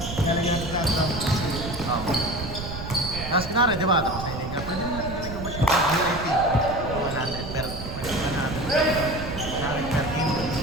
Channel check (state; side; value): noise; right; rumble, 8 dB below the sound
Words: Tapos kunwari, di ba? Tapos nainig ka. Pwede natin nainig ba siya? VIP. 100 per 100 per team.